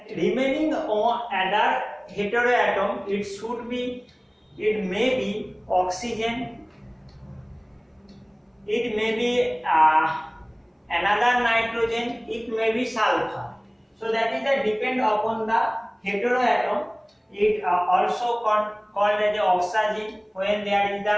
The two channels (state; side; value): identical; both; correlation 1.00